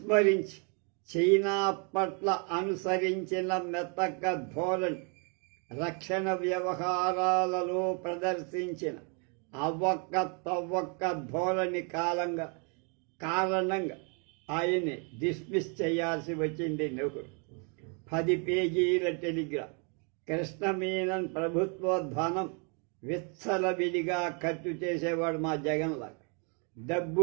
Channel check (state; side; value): quieter; left; 36.6 dB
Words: చైనా పట్ల అనుసరించిన మెతక ధోరణి, రక్షణ వ్యవహారాలలో ప్రదర్శించిన అవ్వక్క తవ్వక్క ధోరణి కారణంగా ఆయన్ని డిస్మిస్ చేయాల్సి వచ్చింది నెహ్రూ. 10 పేజీల టెలిగ్రామ్. కృష్ణ మీనన్ ప్రభుత్వ ధనం విచ్చలవిడిగా ఖర్చు చేసేవాడు మా జగన్లాగా.